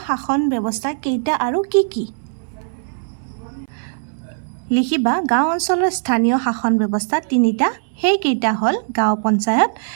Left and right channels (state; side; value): silent; left; 64 dB below the other